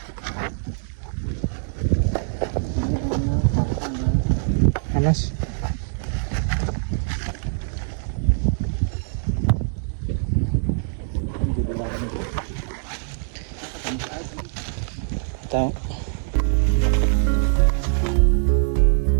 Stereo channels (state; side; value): silent; left; digital silence